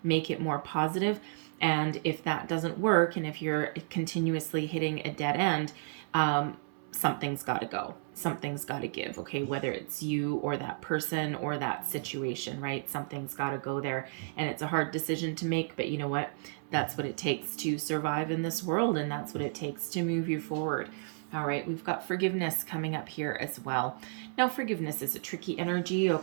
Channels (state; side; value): silent; left; 56 dB below the other